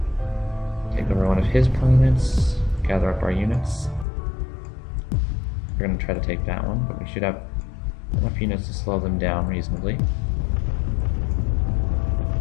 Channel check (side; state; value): right; drops out; at 4.0 s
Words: Take over one of his planets. Gather up our units. We're going to try to take that one, but we should have enough units to slow them down reasonably.